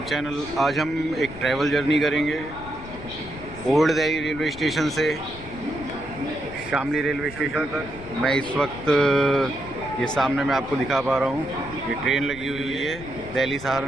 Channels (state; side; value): noise; left; rumble, 15 dB below the sound